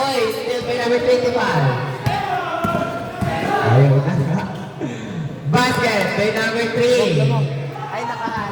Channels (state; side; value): identical; both; correlation 1.00